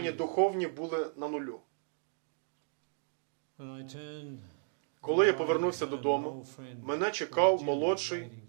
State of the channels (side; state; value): left; silent; digital silence